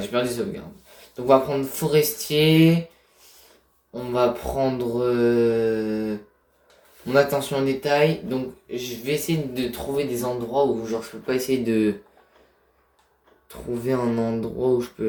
perdu les sauvegardes. Donc on va prendre forestier, on va prendre mon attention au détail. Donc je vais essayer de trouver des endroits où genre je peux pas essayer de trouver un endroit où je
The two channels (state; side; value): identical; both; correlation 1.00